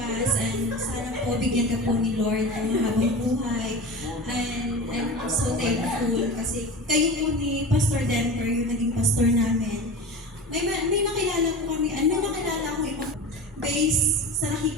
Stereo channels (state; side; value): normal; both; correlation 0.31